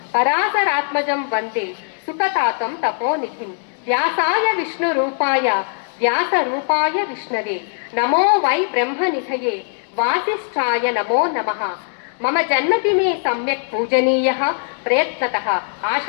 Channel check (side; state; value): right; silent; 66 dB below the other